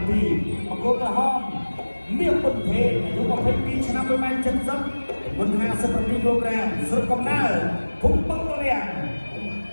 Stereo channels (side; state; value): both; inverted; correlation -1.00